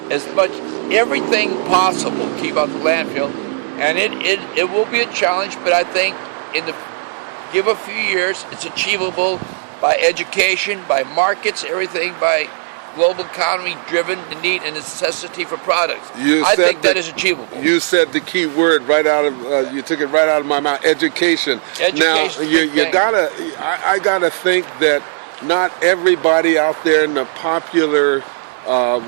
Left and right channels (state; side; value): silent; left; 65 dB below the other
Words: as much everything possible, keep out the landfill, and it will be a challenge. But I think give a few years, it's achievable by education, by markets, everything, by global economy driven, the need and necessity for products. I think that is achievable. You said the key word right out of you took it right out of my mouth. Education. Now I gotta think that not everybody out there in the popular